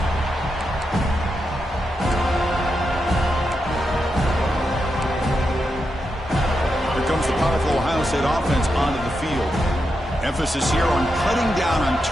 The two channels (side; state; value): both; normal; correlation 0.86